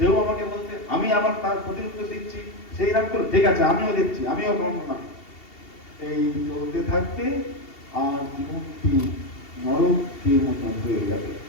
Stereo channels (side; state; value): right; late; 2.7 ms